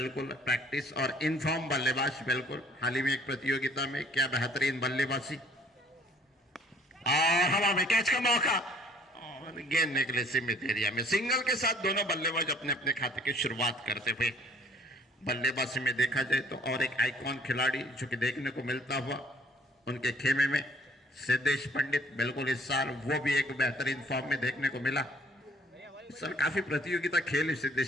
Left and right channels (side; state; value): both; normal; correlation 0.57